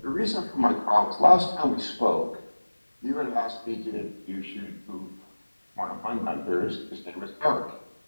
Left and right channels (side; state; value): both; inverted; correlation -1.00